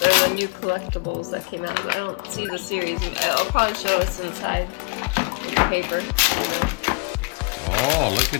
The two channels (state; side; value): quieter; right; 30.8 dB